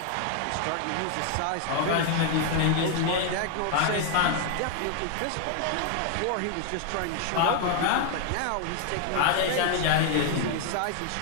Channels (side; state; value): both; different; correlation 0.00